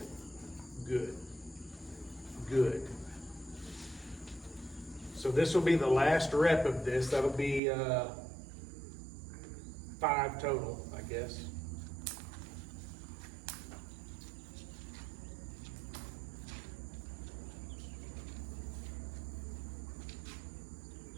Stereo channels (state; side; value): drops out; left; at 7.6 s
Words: Good. Good. So this will be the last rep of this. That'll be 5 total, I guess.